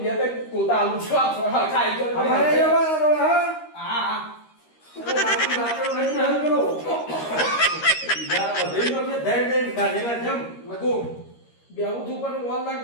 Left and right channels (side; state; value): right; late; 13 ms